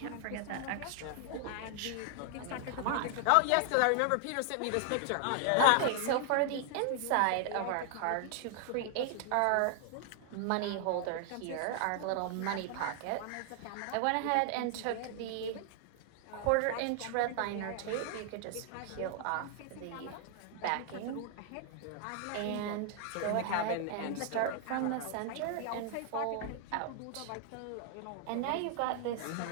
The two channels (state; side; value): different; both; correlation 0.00